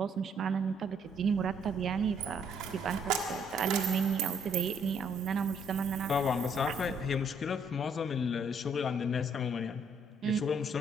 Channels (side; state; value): both; normal; correlation 0.68